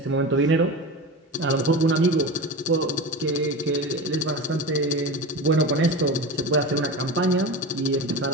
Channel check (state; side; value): normal; both; correlation 0.27